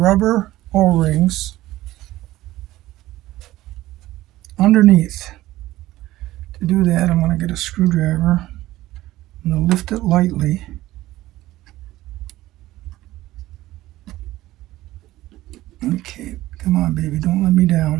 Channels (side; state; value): left; quieter; 16.2 dB